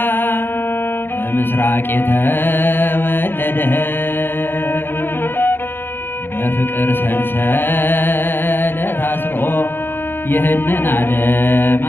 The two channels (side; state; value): right; late; 0.10 ms